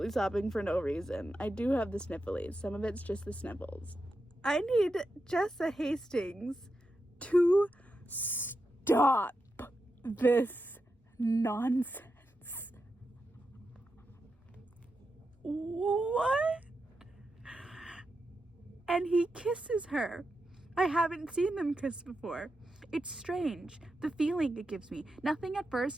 sobbing for no reason. I do have the snifflies. Some of it's just the sniffles. I need Jessa Hastings to stop this nonsense. What? And he kisses her. I haven't seen them kiss before. It's strange, the feeling it gives me. Nothing at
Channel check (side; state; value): both; normal; correlation 0.88